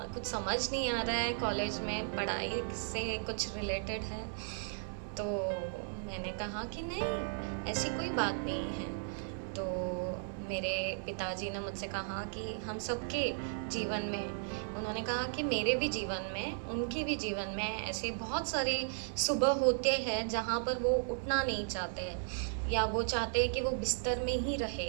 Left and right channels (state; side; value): silent; left; digital silence